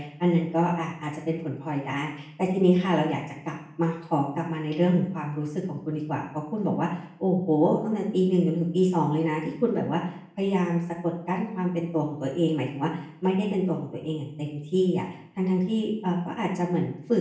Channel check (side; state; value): both; identical; correlation 1.00